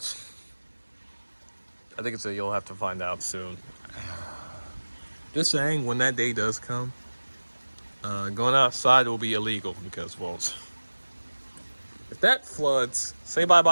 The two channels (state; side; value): inverted; both; correlation -1.00